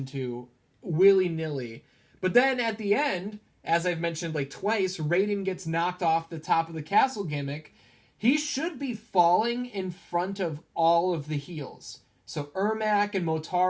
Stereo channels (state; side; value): identical; both; correlation 1.00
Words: to willy-nilly. But then at the end, as I've mentioned like twice, Raiden gets knocked off the top of the castle gimmick. He should be falling in front of all of the heels. So Ermac and